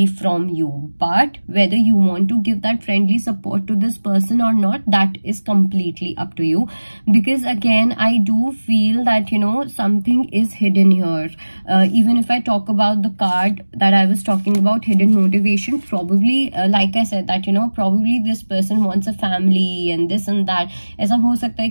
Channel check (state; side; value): inverted; both; correlation -1.00